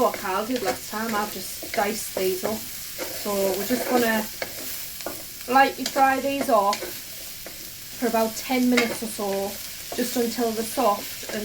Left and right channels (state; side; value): noise; left; rumble, 20 dB below the sound